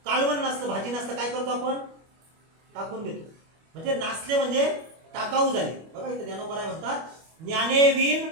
कालवण नासलं, भाजी नासलं, काय करतो आपण? टाकून घेतो. म्हणजे नासले म्हणजे टाकाऊ झाले. बघा इथे ज्ञानोबर आहे म्हणतात, ज्ञाने वीन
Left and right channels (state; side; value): late; left; 25 ms